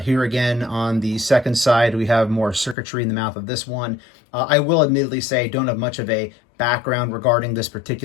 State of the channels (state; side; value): drops out; right; at 2.8 s